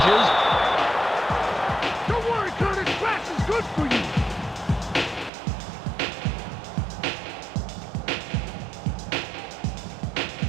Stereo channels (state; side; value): drops out; left; at 5.3 s